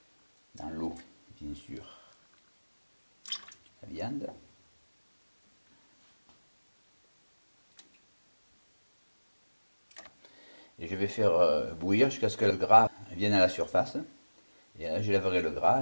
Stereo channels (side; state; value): both; inverted; correlation -1.00